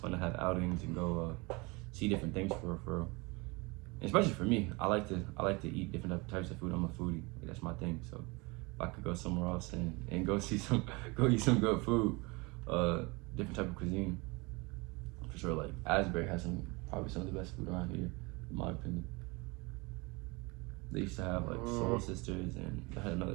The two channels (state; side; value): quieter; left; 26.5 dB